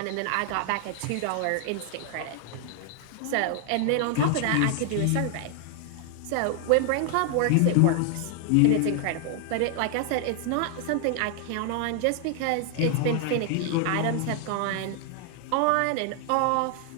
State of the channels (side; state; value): both; different; correlation 0.00